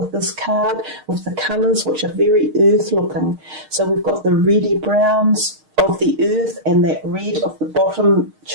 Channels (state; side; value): late; left; 6.5 ms